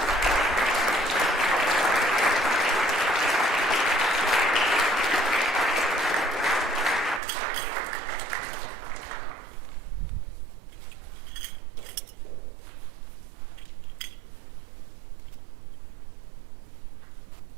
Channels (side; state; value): left; drops out; at 7.2 s